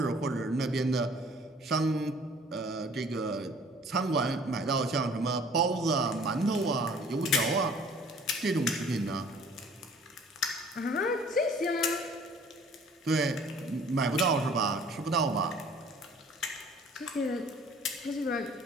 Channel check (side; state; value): both; normal; correlation 0.53